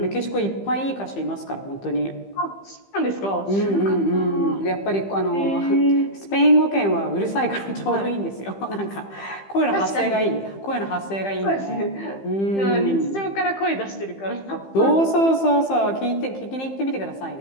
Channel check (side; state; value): right; late; 15 ms